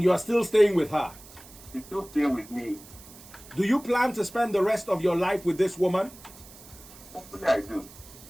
you are still staying with her? She's still staying with me. Do you plan to spend the rest of your life with this woman? Hopefully I do.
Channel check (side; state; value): right; noise; hiss, 20 dB below the sound